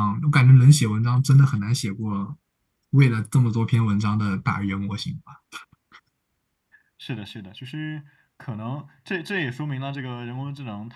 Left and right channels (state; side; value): identical; both; correlation 1.00